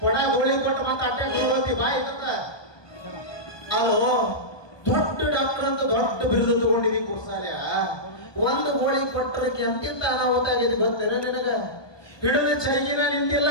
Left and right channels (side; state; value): right; late; 1.2 ms